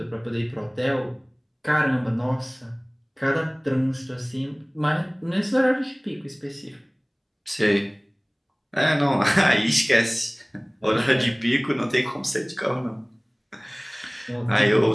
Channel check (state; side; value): identical; both; correlation 1.00